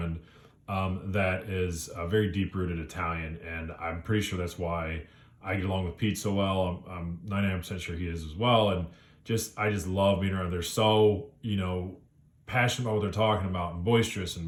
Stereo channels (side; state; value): both; identical; correlation 1.00